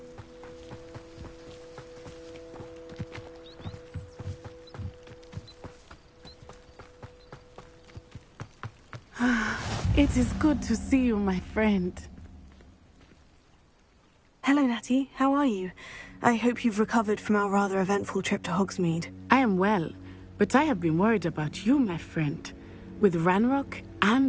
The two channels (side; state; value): both; identical; correlation 1.00